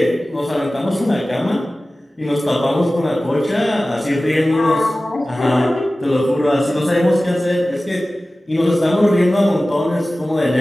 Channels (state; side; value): normal; both; correlation 0.96